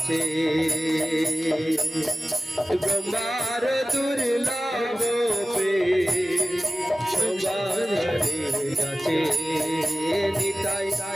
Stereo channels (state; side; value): normal; both; correlation 0.96